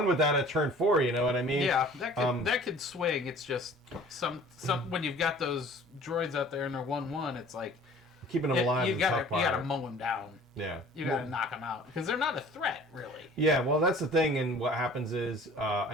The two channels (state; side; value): normal; both; correlation 0.48